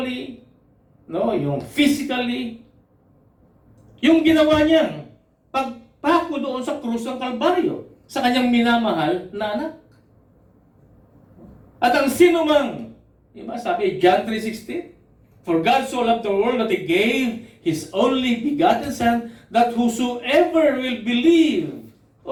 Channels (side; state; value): both; identical; correlation 1.00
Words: no, yung physically, yung ginawa niya, pagpako doon sa krus ng Kalbaryo, sa kanyang minamahal na anak. At ang sinumang, diba, sabi, John 3:16, for God so loved the world that He gave His only begotten Son, that whosoever will believe